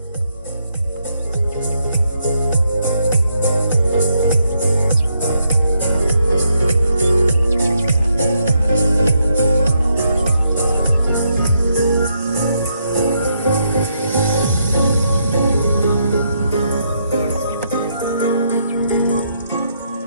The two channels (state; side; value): inverted; both; correlation -0.77